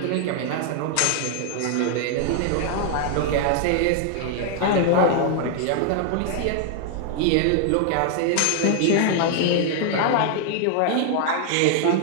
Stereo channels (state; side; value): different; both; correlation 0.00